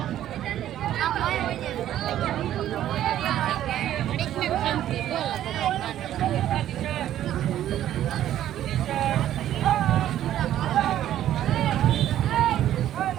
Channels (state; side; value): quieter; left; 12.0 dB